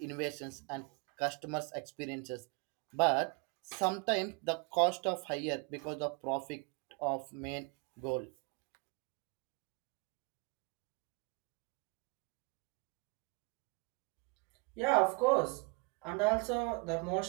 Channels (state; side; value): quieter; left; 31.5 dB